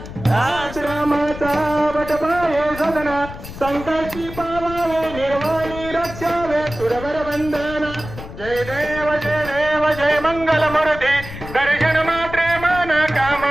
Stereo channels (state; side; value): noise; left; rumble, 12 dB below the sound